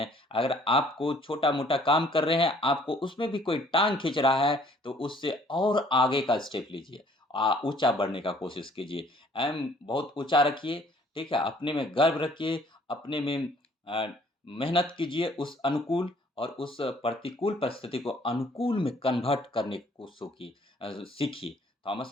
अगर आपको छोटा मोटा काम कर रहे हैं, आपको उसमें भी कोई टांग खींच रहा है, तो उससे और आगे का स्टेप लीजिए, ऊंचा बढ़ने का कोशिश कीजिए। एम बहुत ऊंचा रखिए। ठीक है। अपने में गर्व रखिए, अपने में मेहनत कीजिए उस अनुकूल, और उस प्रतिकूल परिस्थिति को अनुकूल में कन्वर्ट करने को सीखी।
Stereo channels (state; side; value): normal; both; correlation 0.59